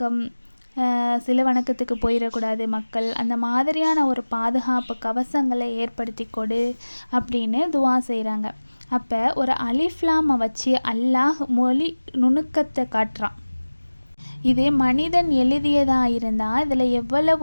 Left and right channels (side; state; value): both; inverted; correlation -1.00